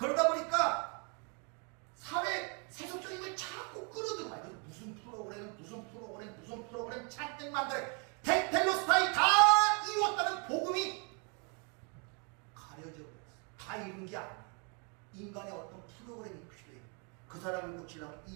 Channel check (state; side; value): quieter; left; 36.0 dB